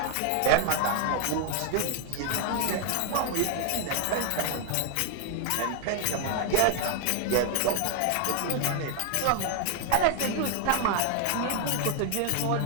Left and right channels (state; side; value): different; both; correlation 0.00